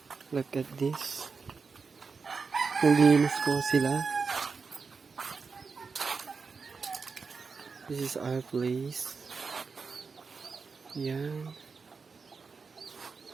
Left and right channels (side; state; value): left; quieter; 5.0 dB